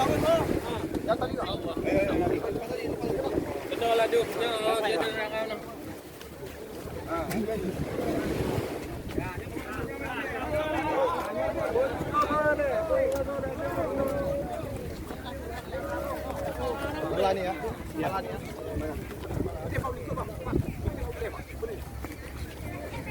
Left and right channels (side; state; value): both; identical; correlation 1.00